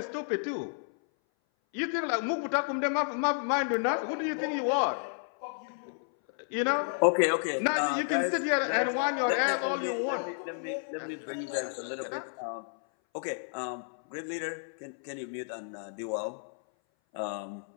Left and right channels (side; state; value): right; silent; 57 dB below the other